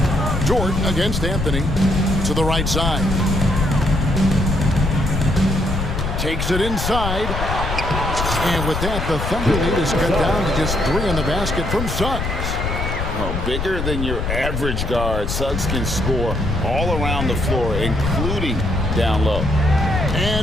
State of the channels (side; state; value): left; noise; rumble, 3 dB below the sound